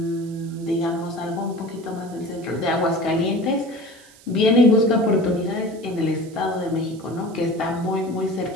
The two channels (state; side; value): noise; right; hiss, 24 dB below the sound